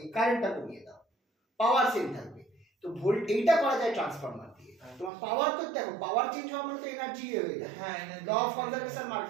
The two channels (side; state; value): left; drops out; at 5.1 s